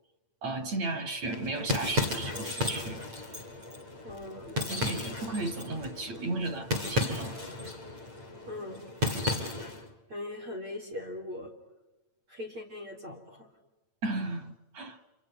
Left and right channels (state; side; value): late; left; 8.8 ms